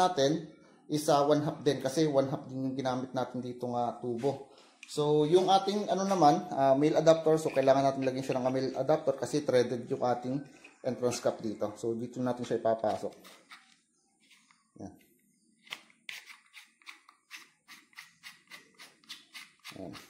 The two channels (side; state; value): both; identical; correlation 1.00